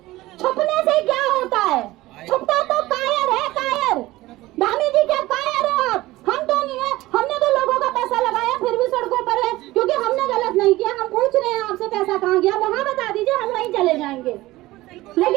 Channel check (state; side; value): quieter; left; 18.1 dB